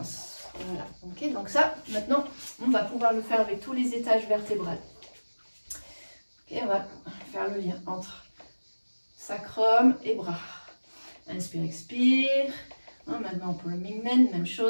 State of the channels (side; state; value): both; inverted; correlation -1.00